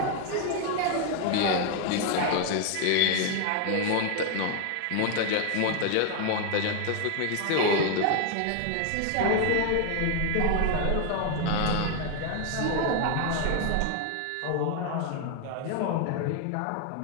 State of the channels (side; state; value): both; different; correlation 0.00